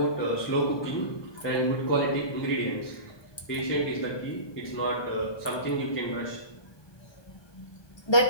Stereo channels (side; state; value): right; late; 1.2 ms